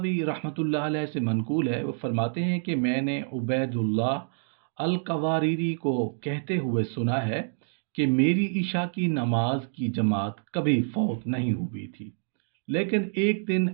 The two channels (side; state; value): left; silent; digital silence